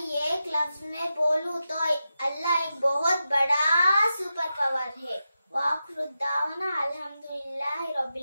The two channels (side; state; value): both; inverted; correlation -0.90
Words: एक लफ्ज में बोलूं तो अल्लाह एक बहुत बड़ा सुपर पावर है। वाखरुद्दावना अल्हम्दुलिल्लाहि